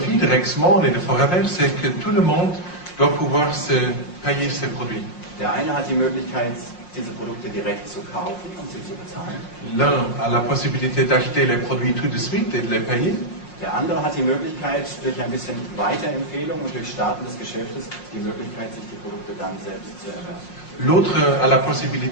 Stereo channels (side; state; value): right; late; 5.6 ms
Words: de Rexmon et de Foraver, c'est que tout le monde doit pouvoir se payer ses produits. Der eine hat die Möglichkeit, diese Produkte direkt zu kaufen und sie zu bezahlen. L'un a la possibilité d'acheter les produits tout de suite et de les payer. Der andere hat die Möglichkeit, durch ein bisschen Weiterempfehlung und durch Starten des Geschäftes, die Möglichkeit, sich die Produkte dann selbst zu erwerben. L'autre a la